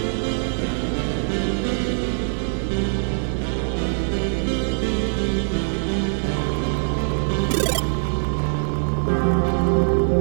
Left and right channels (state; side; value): silent; left; digital silence